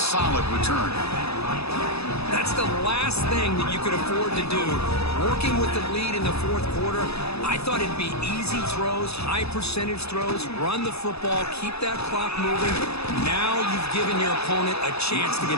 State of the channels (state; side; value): late; right; 0.79 ms